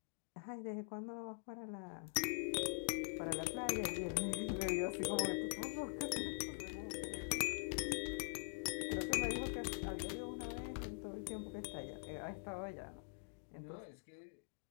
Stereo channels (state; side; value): silent; right; digital silence